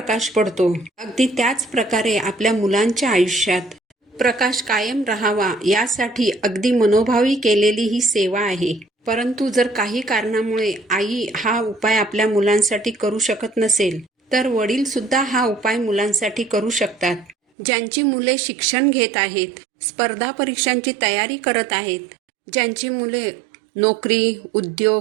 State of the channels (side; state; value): left; drops out; at 17.4 s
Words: पडतो अगदी त्याच प्रकारे आपल्या मुलांच्या आयुष्यात प्रकाश कायम राहावा यासाठी अगदी मनोभावी केलेली ही सेवा आहे. परंतु जर काही कारणामुळे आई हा उपाय आपल्या मुलांसाठी करू शकत नसेल तर वडील सुद्धा हा उपाय मुलांसाठी करू शकतात. ज्यांची मुले शिक्षण घेत आहेत, स्पर्धा परीक्षांची तयारी करत आहेत, ज्यांची मुले नोकरी,